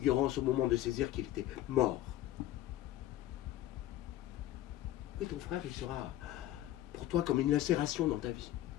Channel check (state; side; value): quieter; right; 13.8 dB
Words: au moment de saisir qu'il était mort, et ton frère, il sera pour toi comme une lacération dans ta vie.